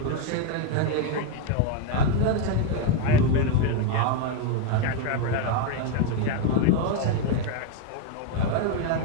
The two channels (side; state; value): both; different; correlation 0.02